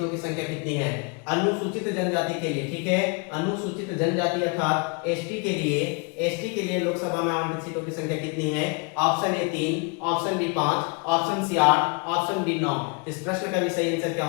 की संख्या कितनी है, अनुसूचित जनजाति के लिए, ठीक है, अनुसूचित जनजाति अर्थात एसटी के लिए लोकसभा में आवंटित सीटों की संख्या कितनी है, option A 3, option B 5, option C 8, option D 9। इस प्रश्न का भी सही आंसर क्या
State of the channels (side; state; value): right; quieter; 33.1 dB